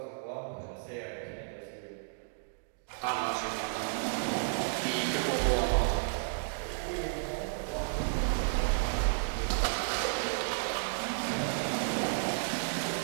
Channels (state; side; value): silent; left; digital silence